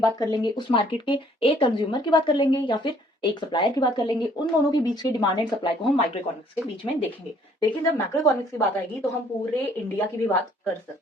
बात कर लेंगे, उस मार्केट के एक कंज्यूमर की बात कर लेंगे या फिर एक सप्लायर की बात कर लेंगे। उन दोनों के बीच के डिमांड एंड सप्लाई को हम माइक्रो इकोनॉमिक्स के बीच में देखेंगे। लेकिन जब मैक्रो इकोनॉमिक्स की बात आएगी तो हम पूरे इंडिया की भी बात कर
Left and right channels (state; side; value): normal; both; correlation 0.61